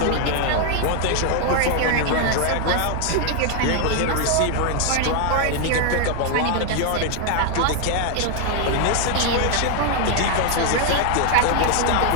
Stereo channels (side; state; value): both; different; correlation 0.00